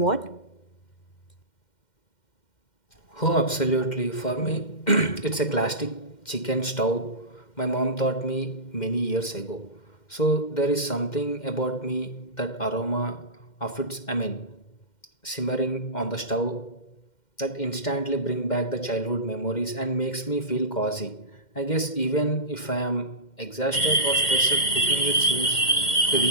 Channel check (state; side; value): late; right; 2.1 ms